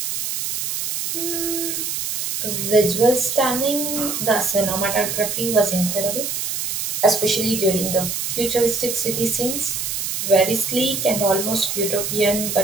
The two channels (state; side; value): noise; right; hiss, 2 dB below the sound